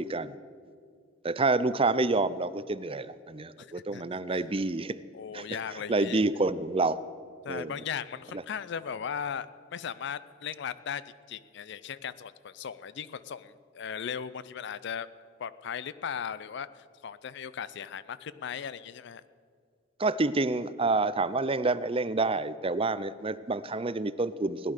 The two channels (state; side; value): normal; both; correlation 0.24